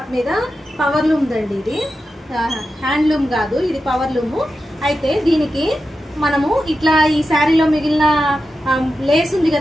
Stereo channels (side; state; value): both; normal; correlation 0.91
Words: మీద పవర్లూమ్ దండి. ఇది హ్యాండ్లూమ్ కాదు, ఇది పవర్లూము. అయితే దీనికి మనము ఇట్లా ఈ శారీలో మిగిలిన లేస్ ఉంది